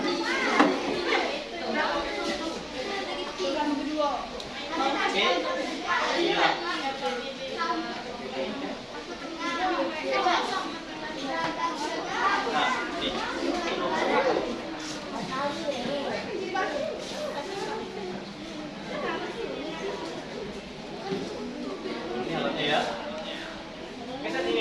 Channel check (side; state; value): both; identical; correlation 1.00